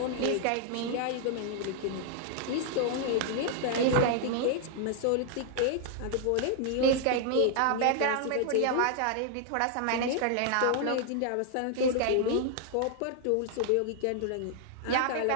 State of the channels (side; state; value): both; different; correlation 0.00